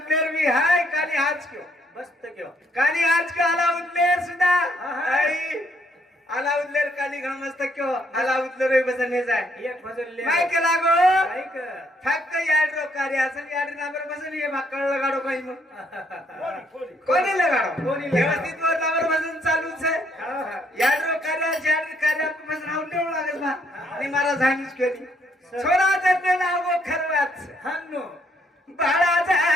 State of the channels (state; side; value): normal; both; correlation 0.70